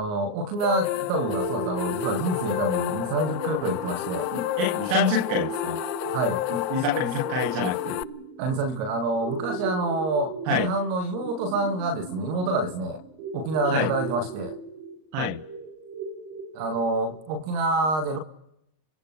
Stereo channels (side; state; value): left; late; 38 ms